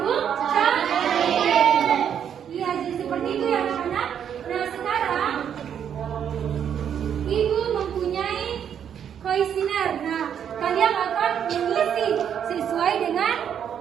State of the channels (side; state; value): left; quieter; 8.6 dB